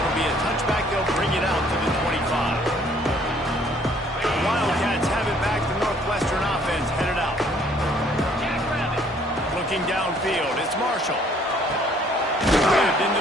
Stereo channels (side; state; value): both; normal; correlation 0.61